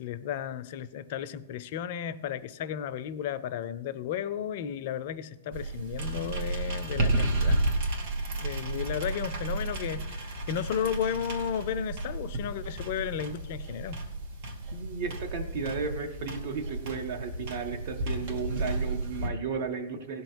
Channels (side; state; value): both; inverted; correlation -0.47